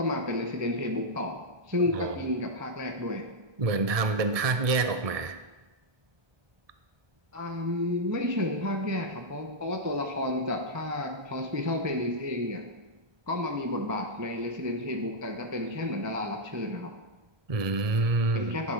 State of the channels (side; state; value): left; late; 1.2 ms